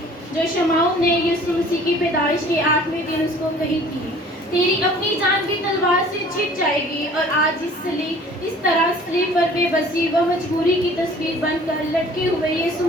जो शमाउन ने यीशु मसीह की पैदाइश के 8वें दिन उसको कही थी, तेरी अपनी जान भी तलवार से छिप जाएगी। और आज इस तरह सलीब पर बेबसी व मजबूरी की तस्वीर बनकर लटके हुए यीशु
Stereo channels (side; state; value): both; normal; correlation 0.50